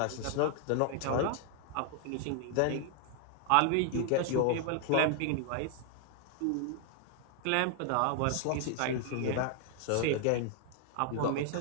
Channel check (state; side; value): different; both; correlation 0.00